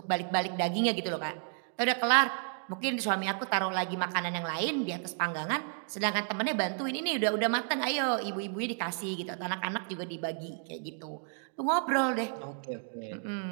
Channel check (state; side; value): silent; left; 56 dB below the other